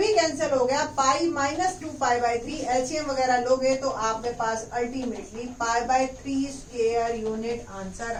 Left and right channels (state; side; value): identical; both; correlation 1.00